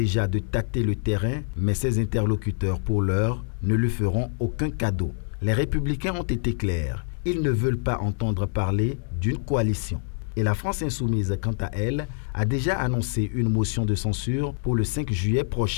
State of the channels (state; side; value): silent; right; digital silence